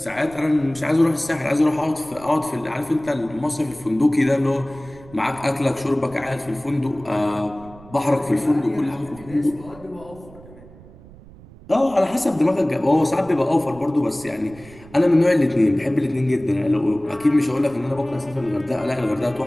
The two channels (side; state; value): right; noise; rumble, 21 dB below the sound